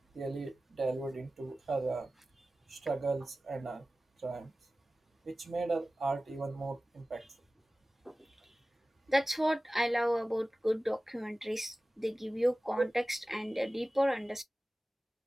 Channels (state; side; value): normal; both; correlation 0.96